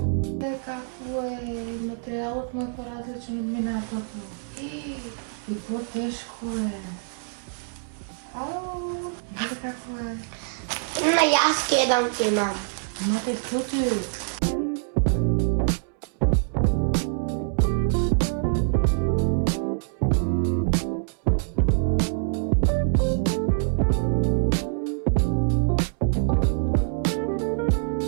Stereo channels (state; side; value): silent; left; 62 dB below the other